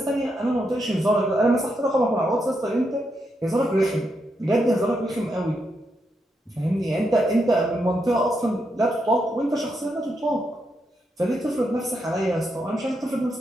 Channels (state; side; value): normal; both; correlation 0.82